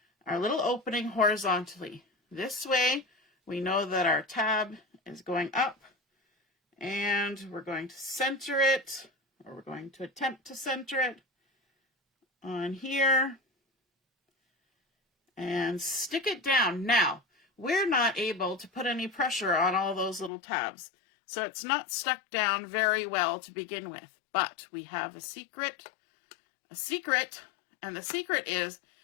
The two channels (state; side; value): drops out; right; at 20.3 s